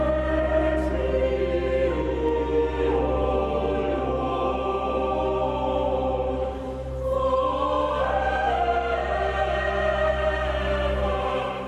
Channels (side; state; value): both; identical; correlation 1.00